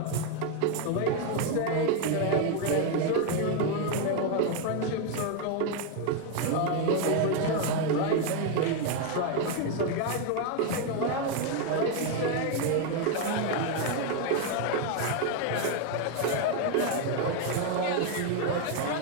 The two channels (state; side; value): different; both; correlation 0.01